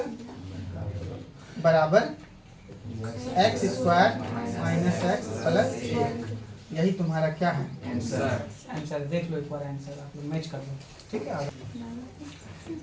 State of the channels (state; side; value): identical; both; correlation 1.00